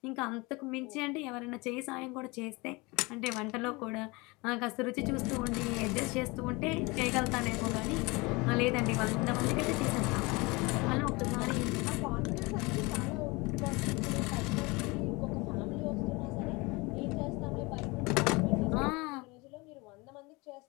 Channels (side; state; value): right; quieter; 25.2 dB